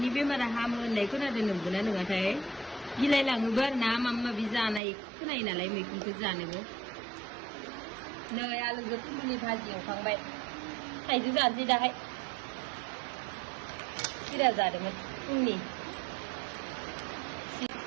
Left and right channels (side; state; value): left; drops out; at 4.8 s